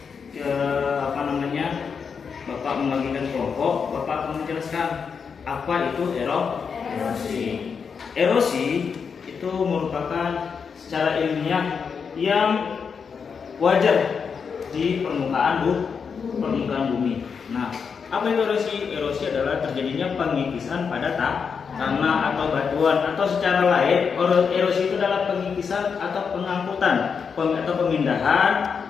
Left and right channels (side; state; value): right; quieter; 6.1 dB